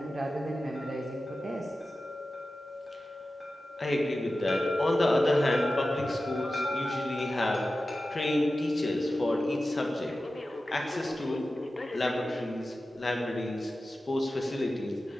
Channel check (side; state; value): both; normal; correlation 0.94